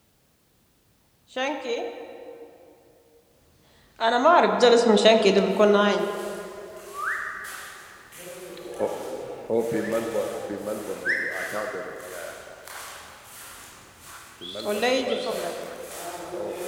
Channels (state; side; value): identical; both; correlation 1.00